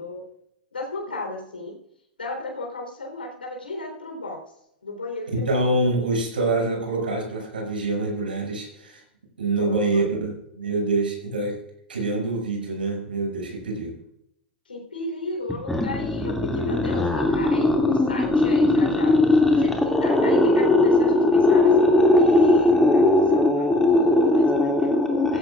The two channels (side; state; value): both; normal; correlation 0.43